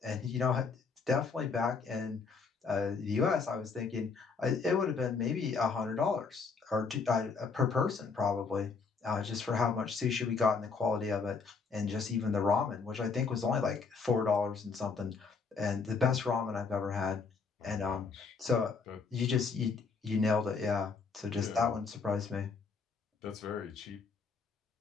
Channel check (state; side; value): quieter; right; 4.9 dB